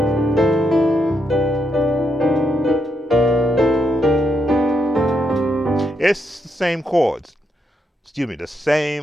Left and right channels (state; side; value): normal; both; correlation 0.79